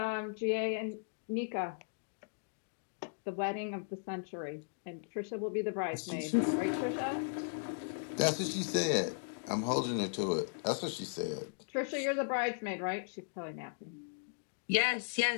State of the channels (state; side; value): silent; right; digital silence